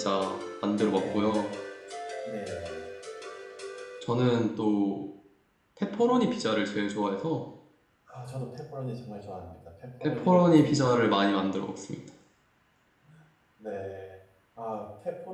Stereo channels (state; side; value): identical; both; correlation 1.00